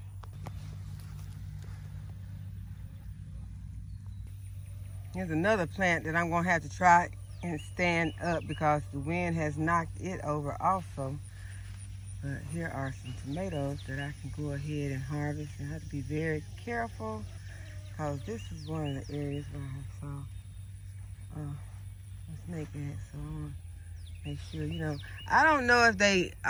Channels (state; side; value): identical; both; correlation 1.00